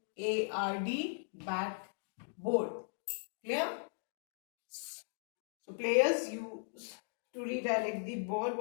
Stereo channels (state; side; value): silent; right; digital silence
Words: Backboard. Clear? So players use to redirect the ball.